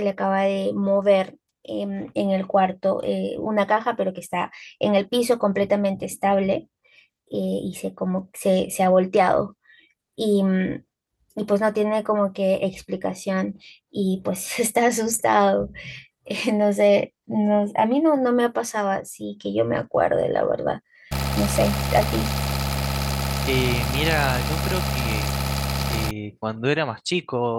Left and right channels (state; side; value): identical; both; correlation 1.00